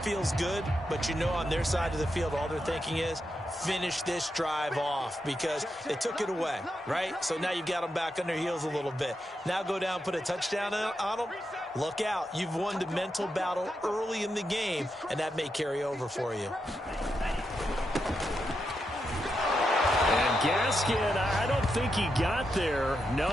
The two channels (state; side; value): normal; both; correlation 0.85